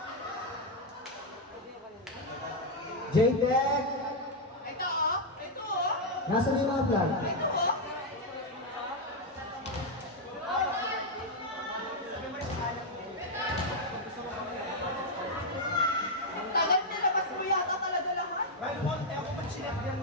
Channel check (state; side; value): normal; both; correlation 0.00